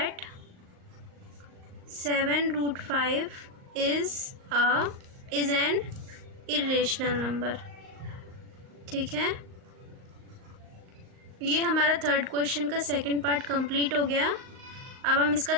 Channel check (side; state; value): left; late; 38 ms